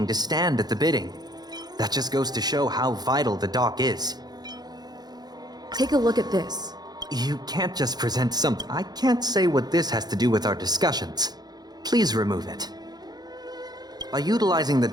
to stand at the bidding. That just goes to show how vital the dock is. Take a look at this. You can't just present something. I can't say what this has to do with our discussions. Please remove it. By utilizing the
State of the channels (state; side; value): late; left; 0.19 ms